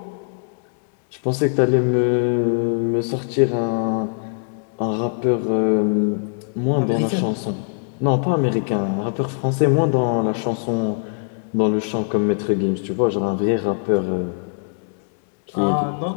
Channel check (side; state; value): right; silent; 65 dB below the other